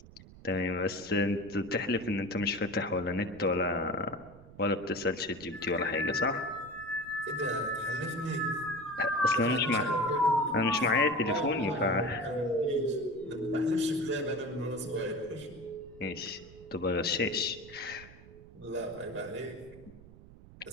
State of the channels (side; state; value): right; noise; rumble, 20 dB below the sound